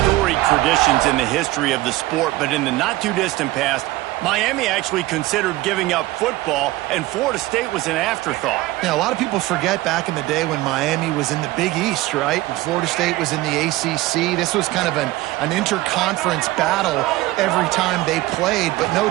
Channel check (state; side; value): quieter; left; 18.0 dB